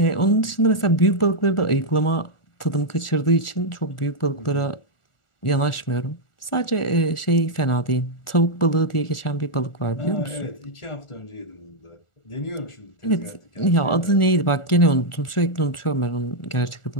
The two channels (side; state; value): right; late; 1.4 ms